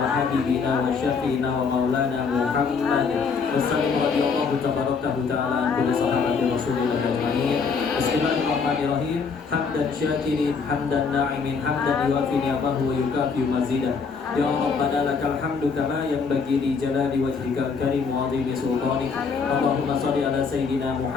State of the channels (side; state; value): right; quieter; 5.4 dB